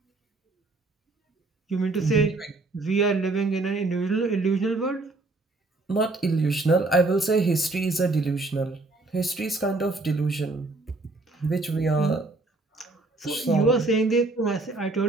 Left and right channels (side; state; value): left; quieter; 3.2 dB